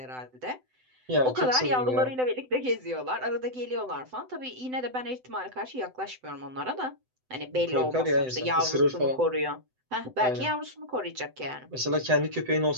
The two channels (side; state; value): left; late; 7.9 ms